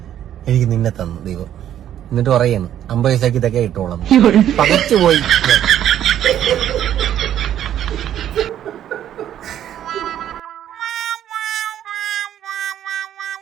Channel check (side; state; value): left; quieter; 10.9 dB